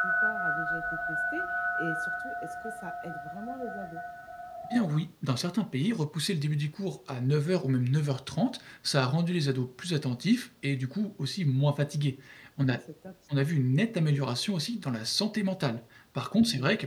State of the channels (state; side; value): identical; both; correlation 1.00